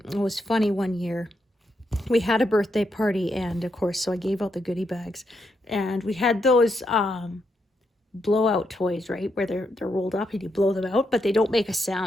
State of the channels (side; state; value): both; normal; correlation 0.81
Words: It was funny one year. We had a birthday party, and of course, so I gave out the goodie bags, and we had those blowout toys, right, where they're rolled up and you blow them out, but they don't make a